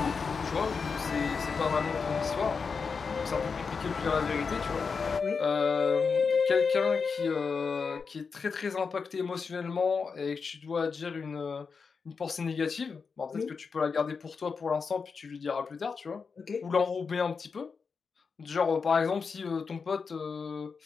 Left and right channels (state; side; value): quieter; right; 5.3 dB